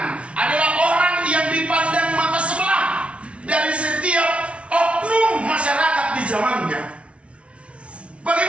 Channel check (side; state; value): left; late; 0.061 ms